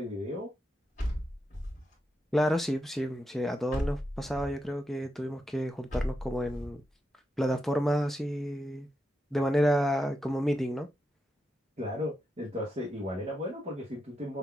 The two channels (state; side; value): normal; both; correlation 0.86